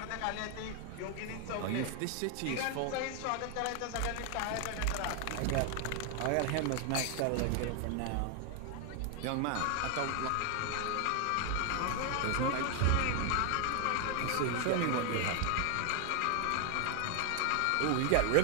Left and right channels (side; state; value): both; different; correlation 0.00